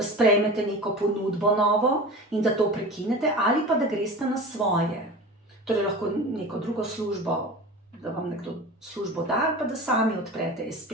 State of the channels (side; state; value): both; normal; correlation 0.34